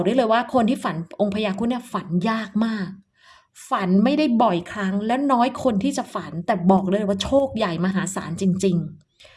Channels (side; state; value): both; identical; correlation 1.00